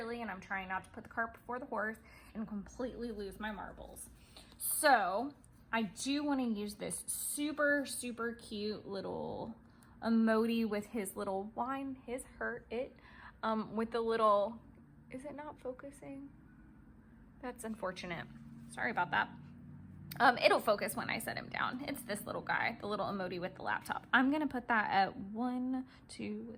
and I'm trying not to put the cart before the horse and completely lose my marbles. So I do want to use this super, super cute little emoji with his little wine, his hurt it, with the little, is it not focusing? That's unfortunate. Sorry about that. It'll focus when I set him down. It's this little guy, the little emoji with the laptop. I'm gonna put that at 1, 2,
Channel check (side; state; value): both; identical; correlation 1.00